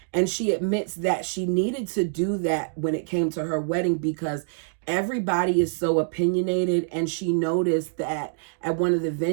And she admits that she needed to do that when it came to her wedding because everybody is so opinionated, and she noticed that at one of the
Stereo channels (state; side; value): silent; left; digital silence